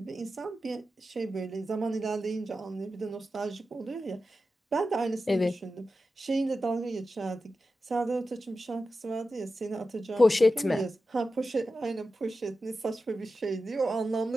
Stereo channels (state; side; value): normal; both; correlation 0.92